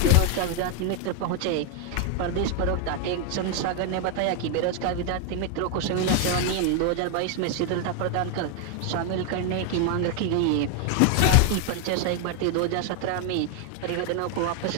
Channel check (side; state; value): both; different; correlation 0.01